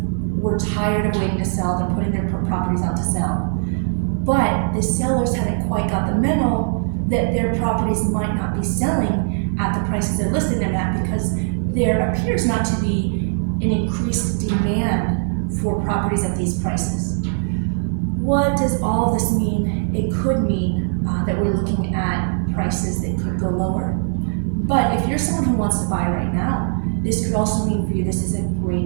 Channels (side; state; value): left; silent; 55 dB below the other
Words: were tired of waiting to sell. They're putting their properties out to sell. But the sellers haven't quite got the memo that their properties might not be selling at the prices they're listing them at, because there appears not to be an increased demand for properties at these prices. What does all of this mean? It could mean that we're looking at prices that could go lower. But if you're someone who wants to buy right now, this could also mean for you this is a